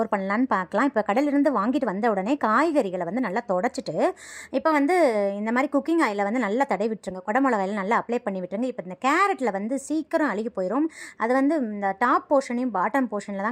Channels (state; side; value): identical; both; correlation 1.00